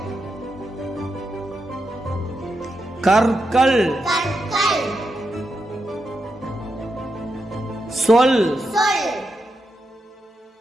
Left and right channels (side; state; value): both; normal; correlation 0.86